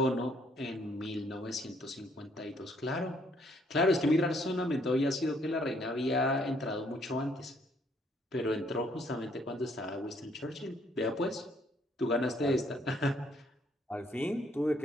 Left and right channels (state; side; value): normal; both; correlation 0.67